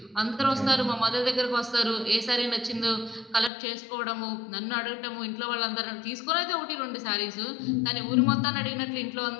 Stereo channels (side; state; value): right; drops out; at 3.5 s